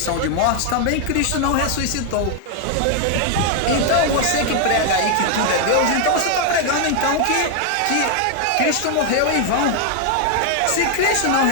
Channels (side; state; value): both; different; correlation 0.00